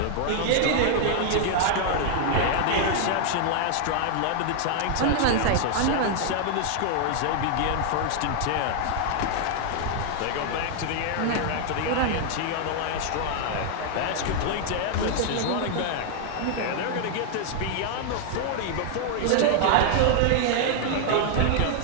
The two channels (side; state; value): both; different; correlation 0.00